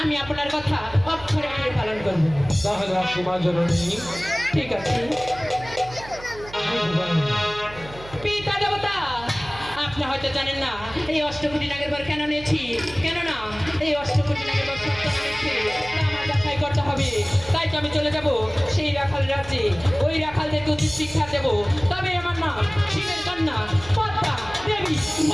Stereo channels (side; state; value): right; noise; hum, 17 dB below the sound